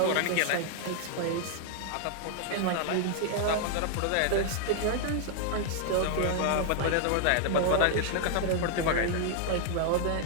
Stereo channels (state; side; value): different; both; correlation 0.00